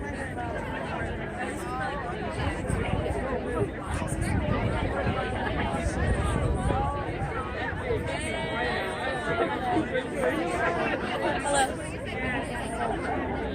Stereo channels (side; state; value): both; identical; correlation 1.00